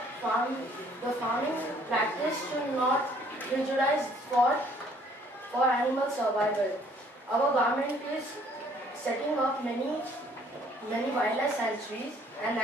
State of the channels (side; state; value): both; normal; correlation 0.60